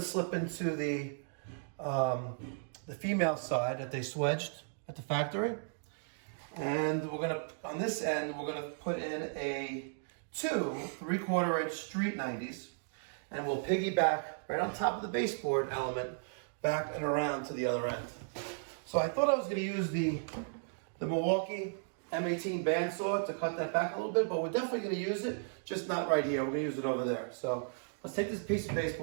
slip into the female side that they swedged at the factory. And we're going to, on this end, we're going to put in two 3/4 inch street 90s. And we'll piggyback right on top of the baseboard element back and around to the other end. So I thought I was going to use the Milwaukee M18 bandsaw to cut that back a little bit, but we're definitely going to use it, just not right here. We're going to use it over there. So let's take this piece of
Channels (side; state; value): left; silent; digital silence